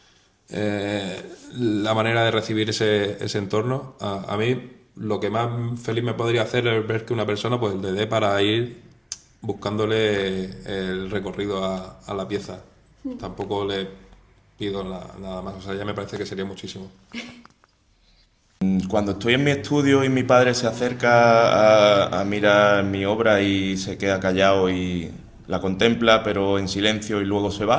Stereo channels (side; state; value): both; identical; correlation 1.00